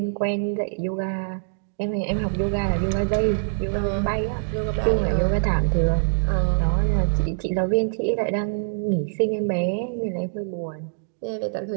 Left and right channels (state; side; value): silent; left; digital silence